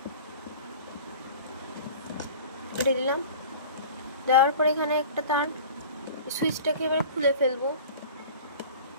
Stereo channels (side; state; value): both; inverted; correlation -0.40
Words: কেটে দিলাম। দেওয়ার পরে এখানে একটা তার, সুইচটাকে এবার খুলে ফেলবো।